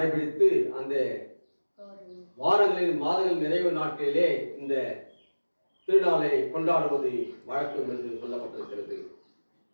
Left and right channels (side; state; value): both; inverted; correlation -1.00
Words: அந்த வாரங்களின் மாதங்கள் நிறைவு நாட்களிலே இந்த திருநாளை கொண்டாடுவது வழக்கம் என்று சொல்லப்பட்டிருக்கிறது.